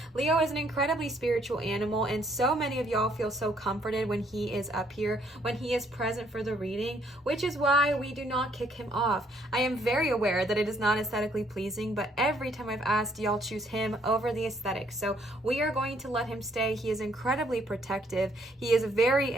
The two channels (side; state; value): both; normal; correlation 0.67